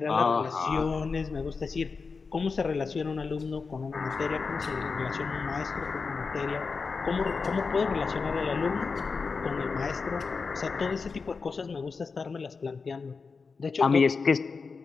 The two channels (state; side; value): quieter; right; 4.8 dB